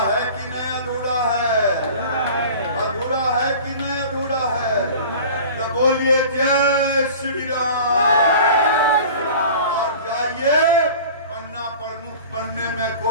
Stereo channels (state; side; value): inverted; both; correlation -0.41